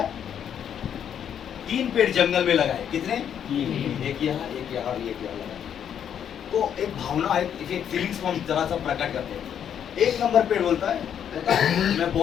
3 पेड़ जंगल में लगाए, कितने? एक यहाँ, एक यहाँ और एक यहाँ लगाए, तो एक भावना, एक फीलिंग्स को हम जरा सा प्रकट करते हैं। 1 नंबर पेड़ बोलता है, पता है, मैं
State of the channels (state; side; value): quieter; right; 8.9 dB